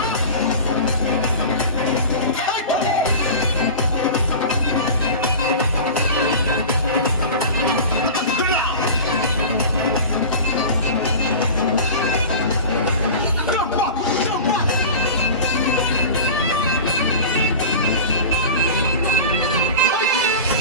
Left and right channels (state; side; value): inverted; both; correlation -0.33